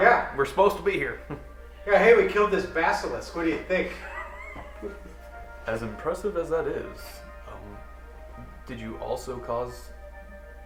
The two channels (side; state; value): both; identical; correlation 1.00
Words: We're supposed to be here. Yeah, hey, we killed this basilisk. What do you think? As impressive as that is, did you also cause